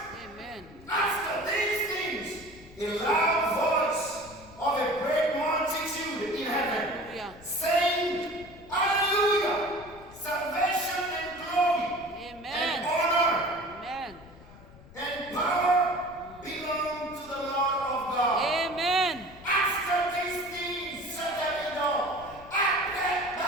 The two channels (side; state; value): left; noise; rumble, 21 dB below the sound